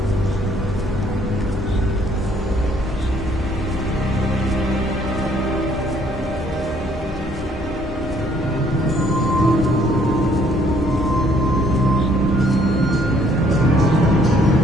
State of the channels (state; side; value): normal; both; correlation 0.63